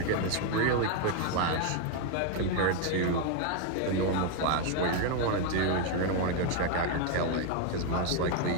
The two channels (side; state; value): both; different; correlation 0.01